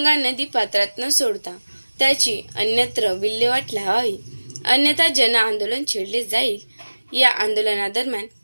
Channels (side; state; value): both; inverted; correlation -1.00